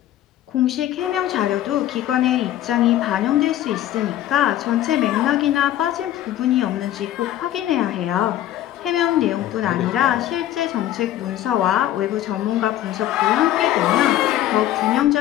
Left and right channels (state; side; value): quieter; right; 12.9 dB